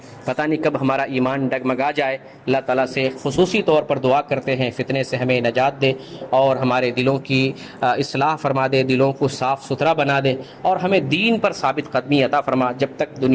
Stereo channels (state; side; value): identical; both; correlation 1.00